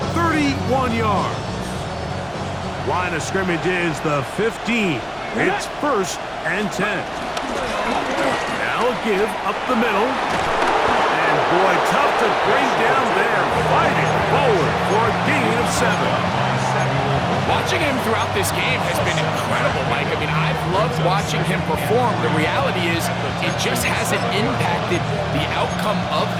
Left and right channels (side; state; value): both; identical; correlation 1.00